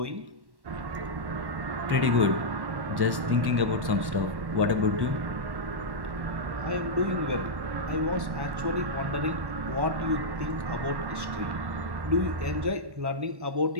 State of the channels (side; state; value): left; late; 1.1 ms